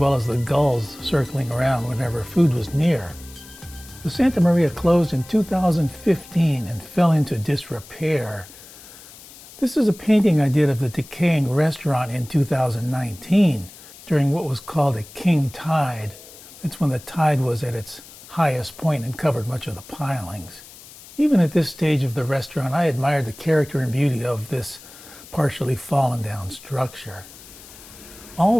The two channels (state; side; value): noise; left; hiss, 19 dB below the sound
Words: as the gulls circling around whenever food was near. The Santa Maria closed in 2015 and fell into disrepair. This is a painting I did of the decaying restaurant in 2019 during what was called a king tide. It's when the tide was at its highest point and covered much of the pilings. Even at this stage of the restaurant, I admired the character and beauty of this partially fallen down structure.